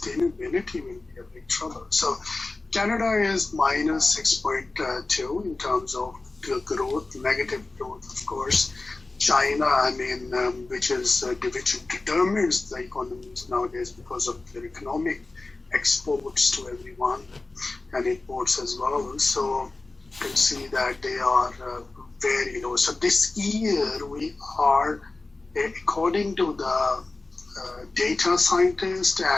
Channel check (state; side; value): quieter; right; 3.3 dB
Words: will be a big trouble. So Canada is minus 6.2 in terms of growth, negative growth, of course. China, which determines the economies nowadays because of their economic exports to everyone and imports as well. So you can see that they are very low. So this year we are, according to the data scientists